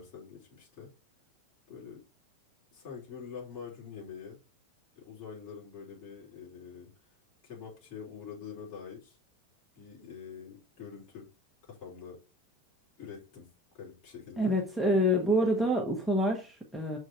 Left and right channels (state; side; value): normal; both; correlation 0.46